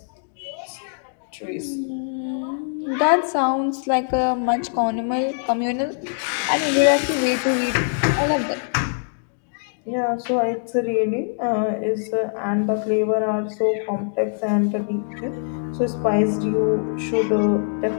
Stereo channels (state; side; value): silent; right; digital silence